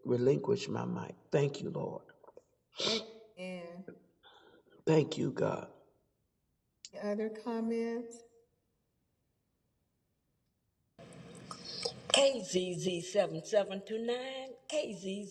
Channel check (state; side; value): identical; both; correlation 1.00